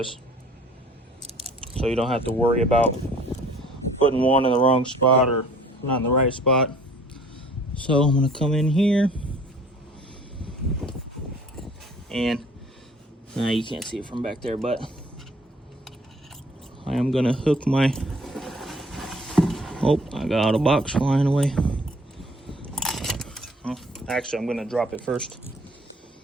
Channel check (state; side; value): normal; both; correlation 0.54